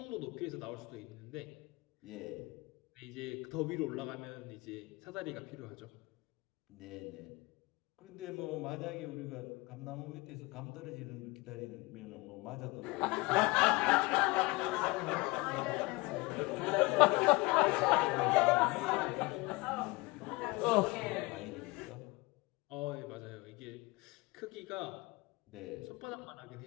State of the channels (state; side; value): quieter; right; 24.3 dB